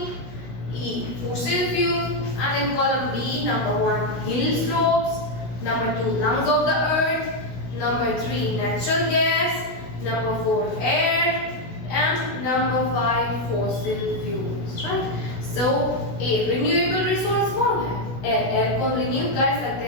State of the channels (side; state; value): right; late; 16 ms